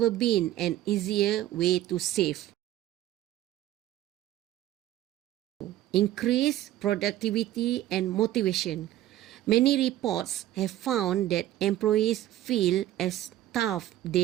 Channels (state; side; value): quieter; left; 13.7 dB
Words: been an easier way to save. Increase productivity and motivation. Many reports have found that employees feel as tough